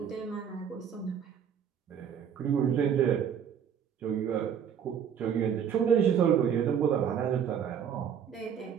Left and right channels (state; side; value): quieter; left; 8.1 dB